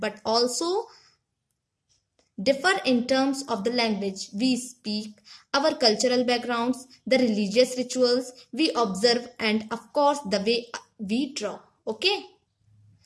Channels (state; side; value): identical; both; correlation 1.00